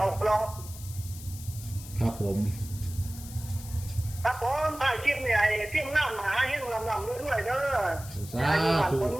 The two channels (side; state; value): left; noise; hiss, 15 dB below the sound